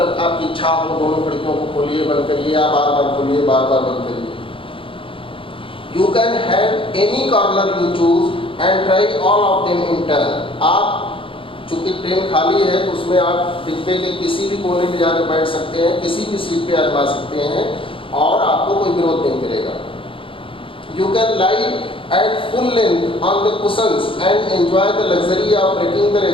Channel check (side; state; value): right; late; 0.26 ms